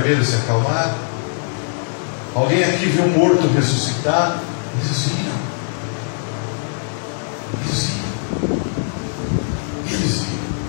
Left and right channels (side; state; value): right; silent; 65 dB below the other